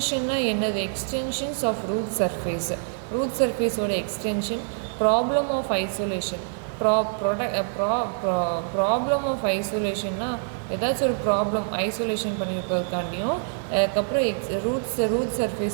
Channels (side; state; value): left; silent; digital silence